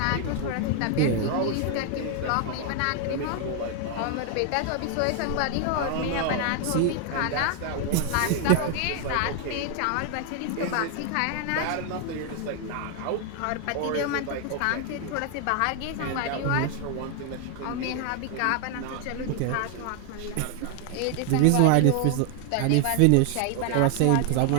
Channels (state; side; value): different; both; correlation 0.00